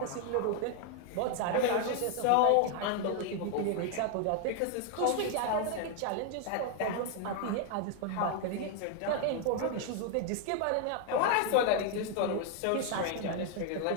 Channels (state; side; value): different; both; correlation 0.00